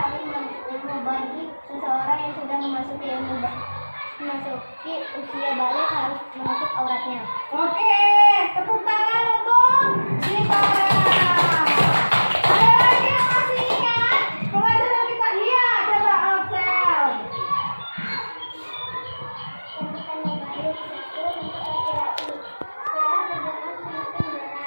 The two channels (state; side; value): inverted; both; correlation -1.00